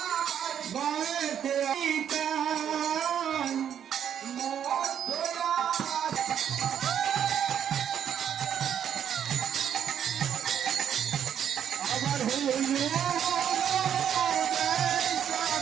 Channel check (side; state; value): left; quieter; 9.1 dB